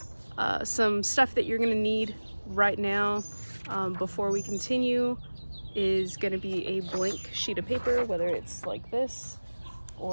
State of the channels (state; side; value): inverted; both; correlation -1.00